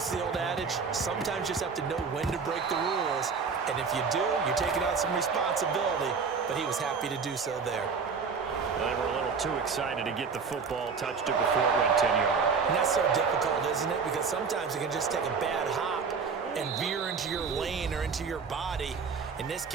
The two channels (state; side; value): quieter; left; 5.4 dB